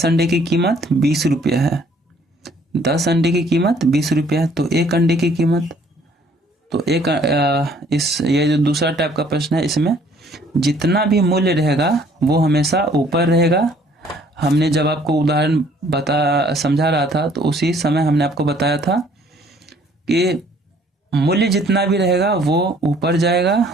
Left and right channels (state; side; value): normal; both; correlation 0.60